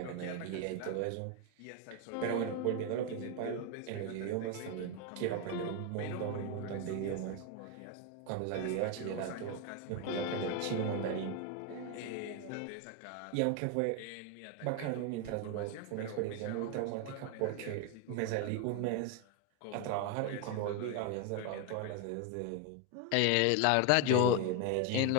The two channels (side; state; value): both; different; correlation 0.01